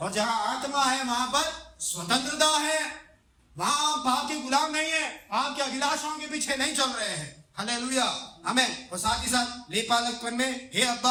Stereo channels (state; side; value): identical; both; correlation 1.00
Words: और जहां आत्मा है वहां पर स्वतंत्रता है, वहां पाप के गुलाम नहीं है, पाप के अभिलाषाओं के पीछे नहीं चल रहे हैं। हालेलुया, आमीन। और साथ ही साथ लेपालकपन में हे